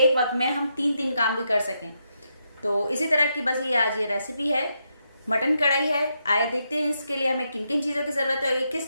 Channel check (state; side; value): inverted; both; correlation -0.81